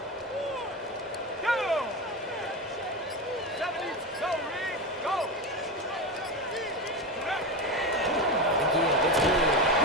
Go! 70, go, Reed, go! The give, it's Blue.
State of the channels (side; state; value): both; normal; correlation 0.19